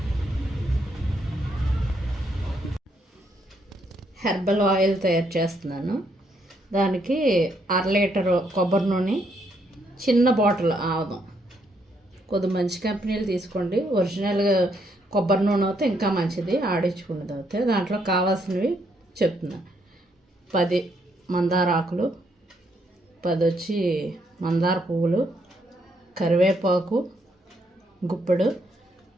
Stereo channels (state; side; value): normal; both; correlation 0.74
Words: హెర్బల్ ఆయిల్ తయారు చేస్తున్నాను. దానికి 1/2 లీటరు కొబ్బరి నూనె, చిన్న బాటిల్ ఆవదం. కొద్ది మంచి కంపెనీలు తీసుకోండి. ఒరిజినల్గా కొబ్బరి నూనె అయితే ఇంకా మంచిది, ఆడించుకున్నది అయితే. దాంట్లో కావాల్సినవి చెప్తున్నా. 10 మందార ఆకులు, 10 వచ్చి మందార పువ్వులు, కరివేపాకు గుప్పెడు,